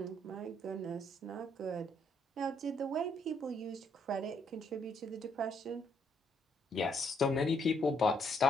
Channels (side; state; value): both; normal; correlation 0.71